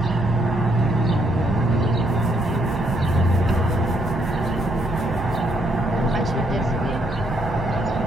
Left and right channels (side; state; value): both; normal; correlation 0.72